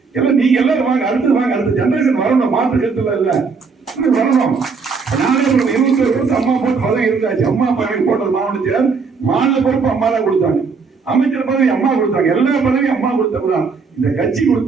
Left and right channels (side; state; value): left; quieter; 5.0 dB